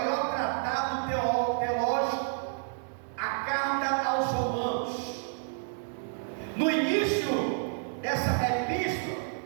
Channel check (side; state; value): left; silent; digital silence